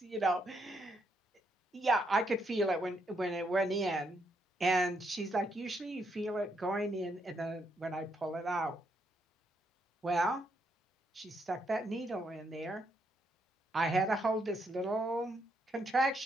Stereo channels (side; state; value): both; normal; correlation 0.76